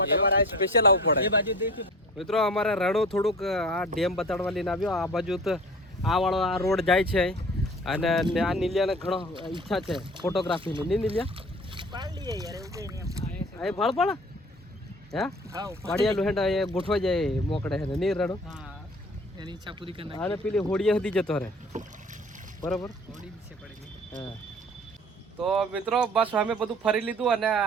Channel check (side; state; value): both; normal; correlation 0.43